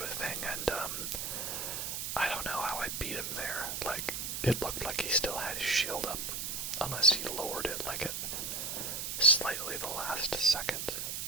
a thing, and I don't know how I beat him there. Like, it looked like he still had his shield up, unless he lowered it, like, at slightly the last second,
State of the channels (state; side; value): noise; right; hiss, 3 dB below the sound